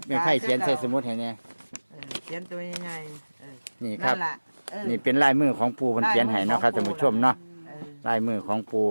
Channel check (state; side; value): inverted; both; correlation -1.00